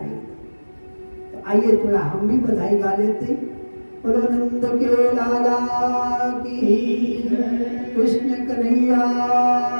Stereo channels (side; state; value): both; inverted; correlation -1.00